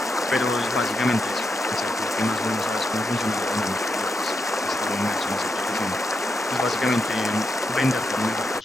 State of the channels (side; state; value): both; normal; correlation 0.84